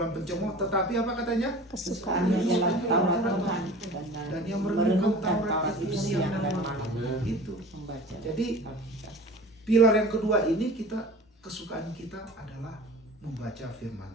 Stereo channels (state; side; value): normal; both; correlation 0.40